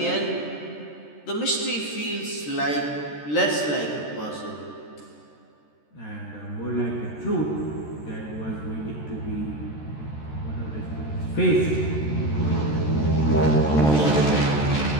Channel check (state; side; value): late; right; 13 ms